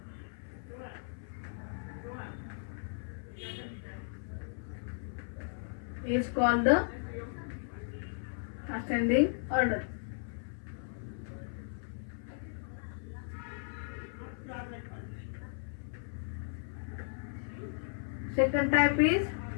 Is called the ascending order. Second type is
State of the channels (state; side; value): silent; right; 54 dB below the other